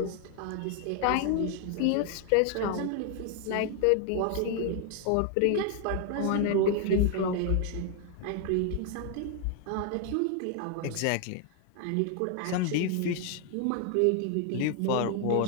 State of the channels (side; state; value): both; different; correlation 0.00